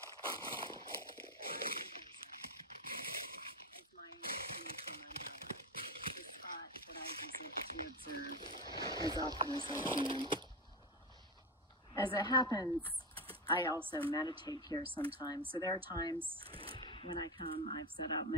of my nature mandala, the spot that I visit to observe as often as I can. As it happens, I also meditate here sometimes. So there are times when I come, I've set out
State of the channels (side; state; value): both; normal; correlation 0.17